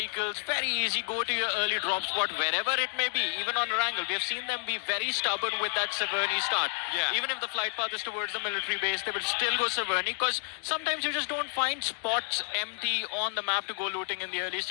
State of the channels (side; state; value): right; silent; 58 dB below the other